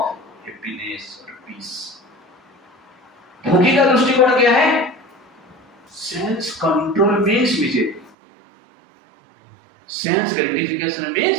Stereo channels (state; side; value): drops out; left; at 8.1 s